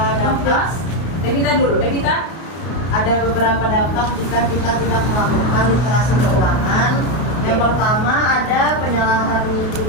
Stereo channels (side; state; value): right; late; 32 ms